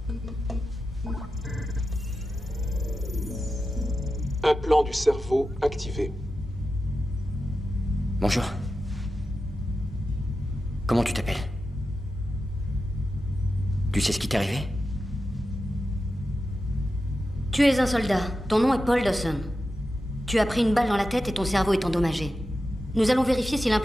Implant du cerveau activé. Bonjour. Comment tu t'appelles? Tu sais ce qui t'est arrivé? Tu es un soldat. Ton nom est Paul Dawson. Tu as pris une balle dans la tête et ton cerveau est endommagé. Nous allons vérifier si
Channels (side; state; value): both; normal; correlation 0.91